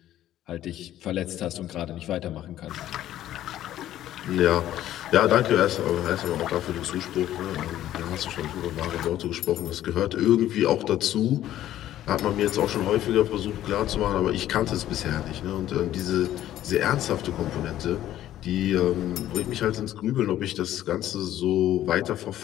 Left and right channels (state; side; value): quieter; right; 12.8 dB